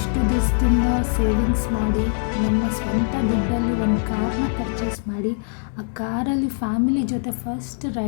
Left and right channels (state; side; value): silent; right; 64 dB below the other